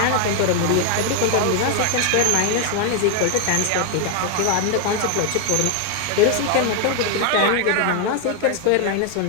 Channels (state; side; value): different; both; correlation 0.00